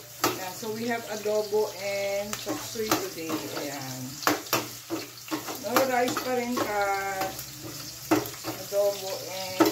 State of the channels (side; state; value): both; identical; correlation 1.00